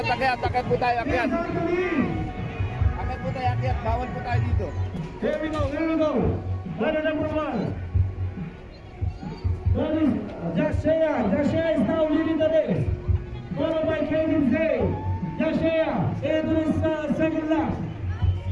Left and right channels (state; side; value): identical; both; correlation 1.00